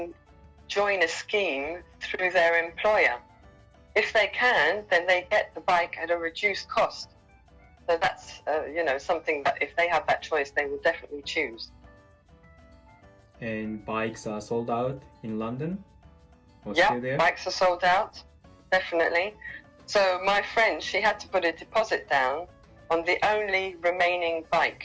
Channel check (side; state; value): both; identical; correlation 1.00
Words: join a scheme through their employer. If they can, then they get the bike at a reduced cost. So that's, something that if they have that choice, they will definitely choose. And bikes are sold out in London? Yeah, bikes are sold out, definitely. So my friend, she had to put a deposit down on the only remaining